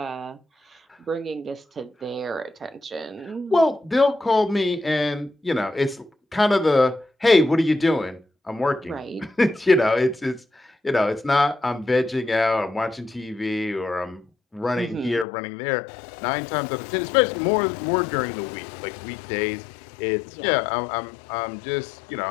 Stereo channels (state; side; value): drops out; right; at 15.2 s